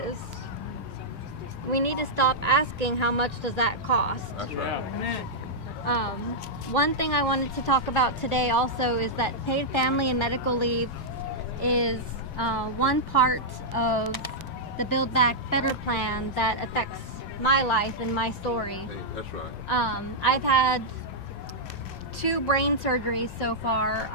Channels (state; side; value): normal; both; correlation -0.08